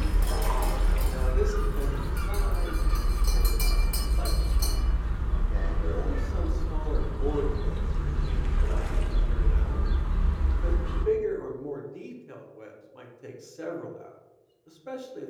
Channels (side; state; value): both; identical; correlation 1.00